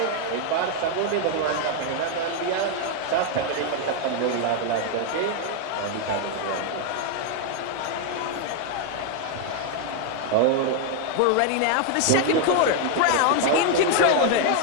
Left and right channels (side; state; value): both; different; correlation 0.00